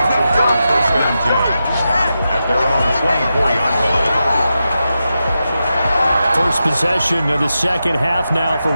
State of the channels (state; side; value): inverted; both; correlation -0.89